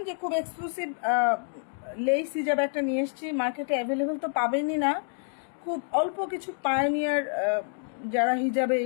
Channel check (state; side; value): silent; right; 59 dB below the other